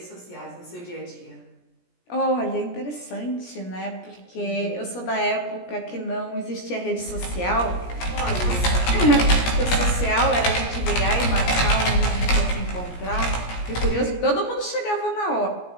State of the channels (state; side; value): late; right; 17 ms